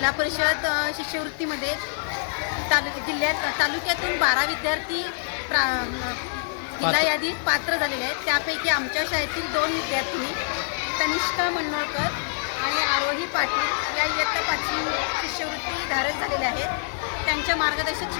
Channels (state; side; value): silent; right; digital silence